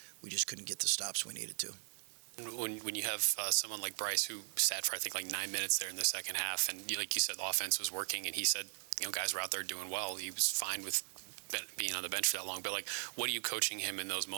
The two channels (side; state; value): left; silent; 52 dB below the other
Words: We just couldn't get the stops we needed to. When you have someone like Bryce who sat for I think like 9 minutes there in the second half, and like you said, the offense was working, and he said, guys were out there doing well. He was fine with being on the bench for that long. But what are you coaching him in those